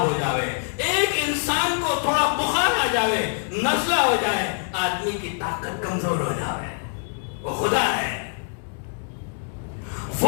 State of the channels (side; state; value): right; silent; 60 dB below the other